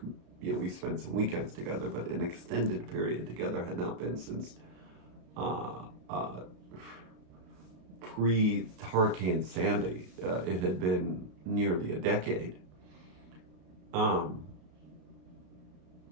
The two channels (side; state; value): left; late; 33 ms